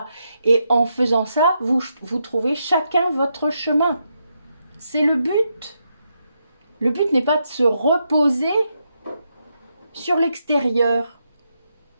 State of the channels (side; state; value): both; inverted; correlation -0.82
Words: Et en faisant ça, vous trouvez chacun votre chemin. C'est le but. Le but n'est pas de se reposer sur l'extérieur.